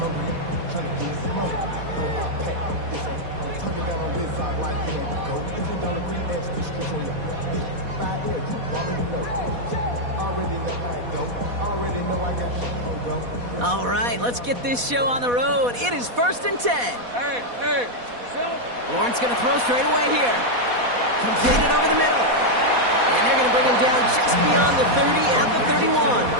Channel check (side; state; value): left; late; 4.1 ms